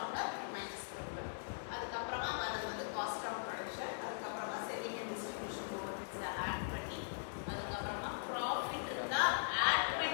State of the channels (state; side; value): silent; right; digital silence